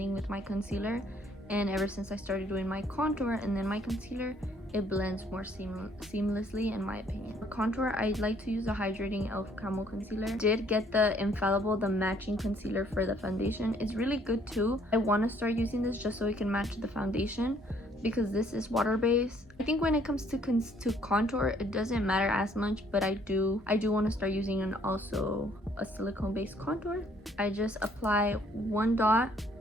with my concealer. And ever since I started doing my contour and then my concealer, it blends more seamlessly, in my opinion. For contour, I like to use the Hydrating e.l.f. Camo Concealer. Did get the Infallible, the matching concealer for the foundation. It's really good too. I want to start using this just so it can match the foundation, because this is water-based. I think when it comes to contour, it doesn't matter as much, but I do want to start using also a silicone-based contour. I just apply one dot,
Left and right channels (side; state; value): both; normal; correlation 0.63